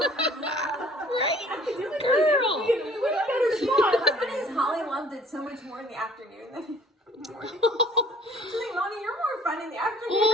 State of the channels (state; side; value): normal; both; correlation 0.54